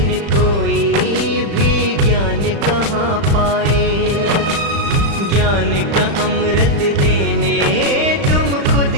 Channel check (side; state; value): left; late; 35 ms